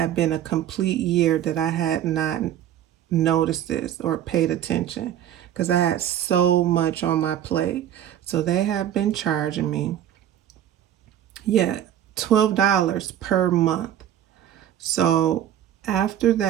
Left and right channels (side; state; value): left; quieter; 11.1 dB